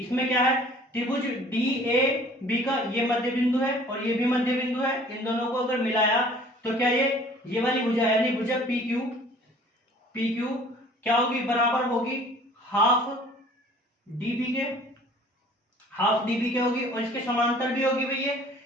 क्या है? त्रिभुज डी ए बी का ये मध्य बिंदु है और ये भी मध्य बिंदु है। इन दोनों को अगर मिलाया तो क्या ये वाली भुजा, यानी भुजा पी क्यू क्या होगी? बराबर होगी हाफ डीबी के, हाफ डीबी के होगी, और इसके समांतर भी होगी भैया,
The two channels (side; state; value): both; normal; correlation 0.51